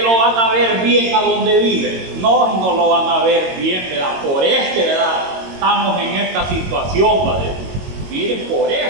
van a ver bien a donde vive? No lo van a ver bien, ¿verdad? Por ¿verdad?, estamos en esta situación, ¿verdad? Miren, por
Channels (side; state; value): left; late; 22 ms